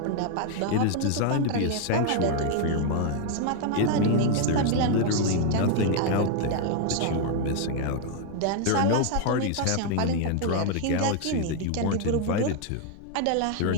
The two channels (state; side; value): different; both; correlation 0.00